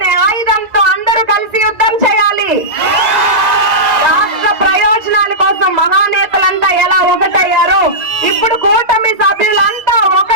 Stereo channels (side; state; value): left; late; 2.0 ms